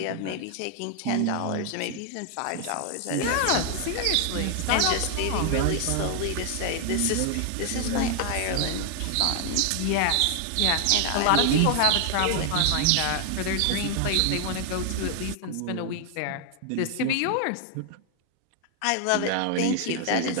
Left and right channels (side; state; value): both; different; correlation 0.00